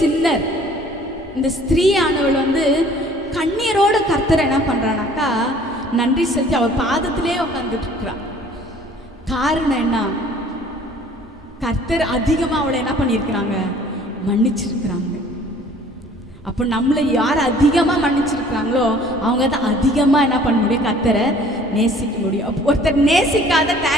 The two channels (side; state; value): both; normal; correlation 0.53